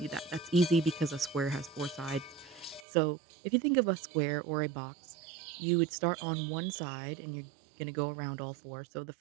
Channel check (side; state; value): left; drops out; at 2.9 s